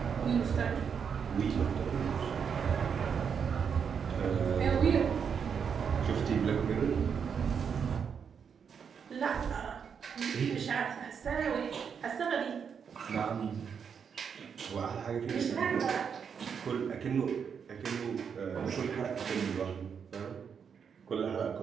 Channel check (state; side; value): quieter; left; 6.9 dB